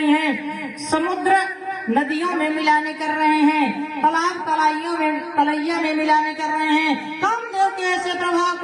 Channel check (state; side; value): identical; both; correlation 1.00